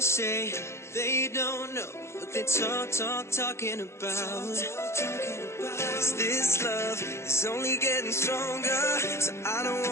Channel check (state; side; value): late; right; 0.13 ms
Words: they don't know what they talking about. 'Cause this love is only getting stronger, so I don't